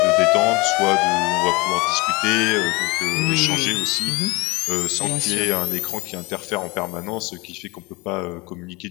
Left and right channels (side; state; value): right; quieter; 24.9 dB